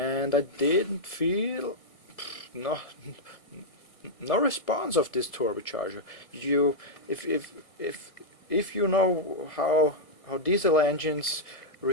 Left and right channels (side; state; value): right; late; 1.5 ms